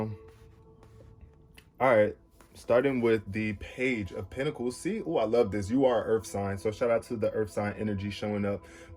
all right, starting with the Page of Pentacles. See, oh, I love this. You are Earth sign. So shout out to the Earth sign energy showing up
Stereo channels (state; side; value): identical; both; correlation 1.00